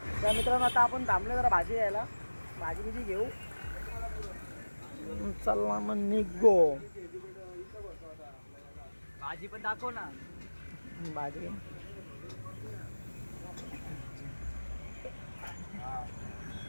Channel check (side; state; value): both; inverted; correlation -1.00